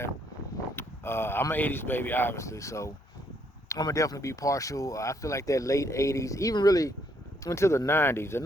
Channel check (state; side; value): normal; both; correlation 0.70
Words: I'm an 80s baby, obviously, so I'm gonna definitely be partial. I feel like that late 80s, even really into the 90s. The